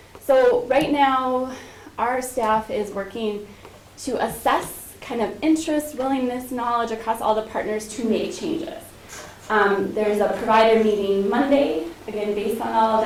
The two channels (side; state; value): both; identical; correlation 1.00